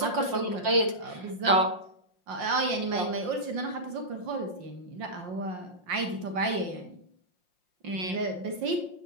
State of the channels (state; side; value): late; left; 5.6 ms